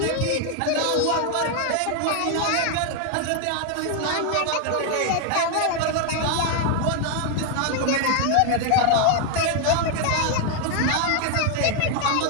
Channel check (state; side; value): different; both; correlation 0.01